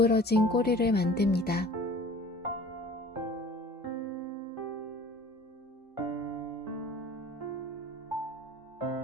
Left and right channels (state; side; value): normal; both; correlation 0.46